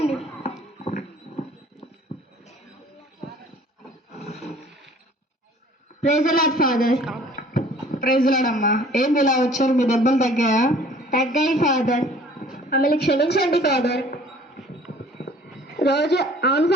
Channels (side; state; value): both; normal; correlation 0.52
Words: Praise the lord father. Praise lord అమ్మా. ఏంది ఇలా వచ్చారు, మీ దెబ్బలు తగ్గాయా? తగ్గాయి ఫాదర్, మమ్మల్ని క్షమించండి ఫాదర్. రోజు అవును